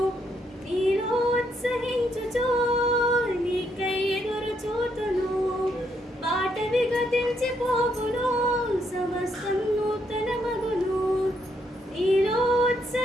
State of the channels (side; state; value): both; normal; correlation 0.75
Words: నీలో ఉత్సహించుచు నీకై ఎదురు చూతును పాతవి గతించిపోవును సమస్తం నూతనమగును నీలో